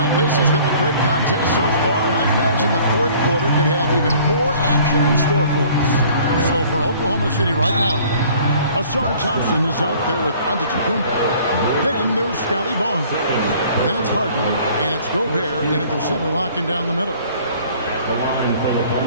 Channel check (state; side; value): inverted; both; correlation -0.53